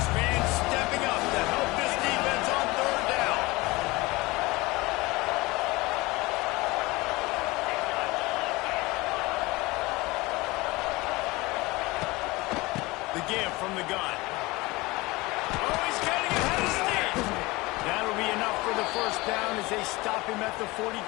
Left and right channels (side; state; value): right; quieter; 22.2 dB